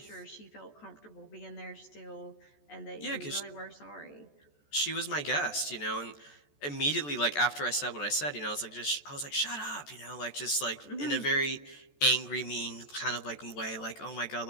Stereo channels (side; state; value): right; late; 14 ms